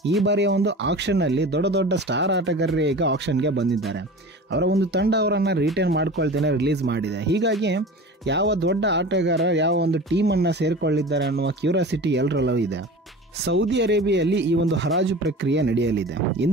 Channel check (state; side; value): normal; both; correlation 0.36